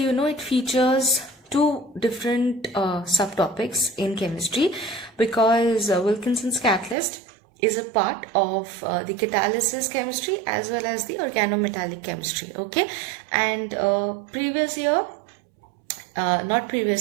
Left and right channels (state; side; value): drops out; left; at 7.0 s